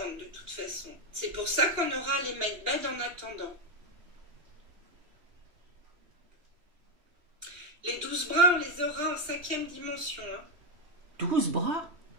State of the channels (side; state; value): left; late; 3.2 ms